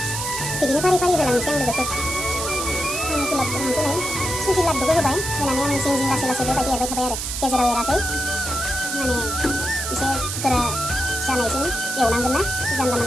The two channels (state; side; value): noise; right; hiss, 4 dB below the sound